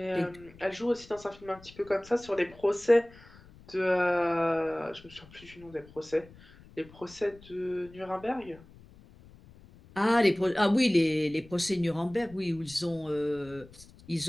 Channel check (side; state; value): left; noise; rumble, 22 dB below the sound